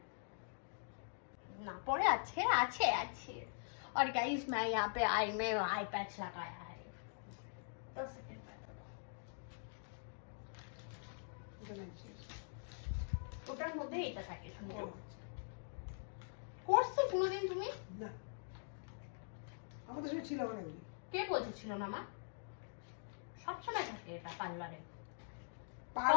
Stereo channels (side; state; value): right; silent; digital silence